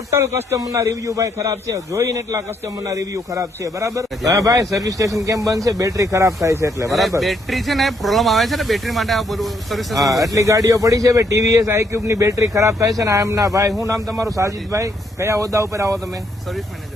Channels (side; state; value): both; normal; correlation 0.72